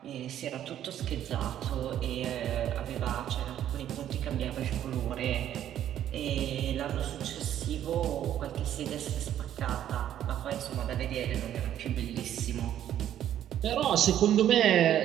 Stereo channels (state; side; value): quieter; left; 11.1 dB